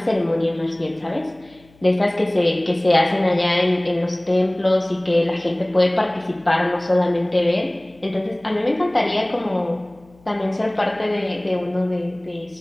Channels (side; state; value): left; noise; hum, 29 dB below the sound